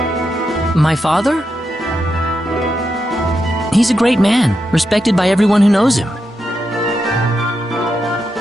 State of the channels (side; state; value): both; normal; correlation 0.85